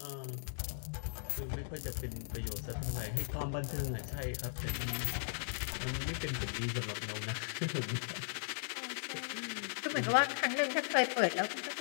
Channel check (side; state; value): right; silent; digital silence